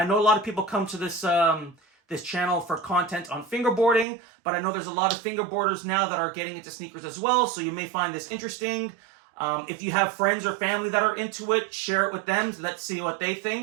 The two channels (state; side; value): drops out; left; at 4.0 s